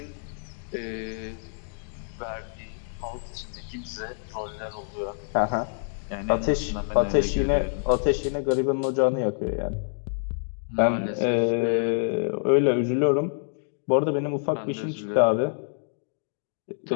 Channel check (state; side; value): silent; right; digital silence